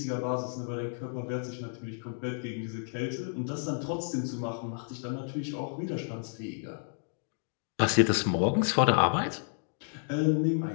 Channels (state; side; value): silent; right; digital silence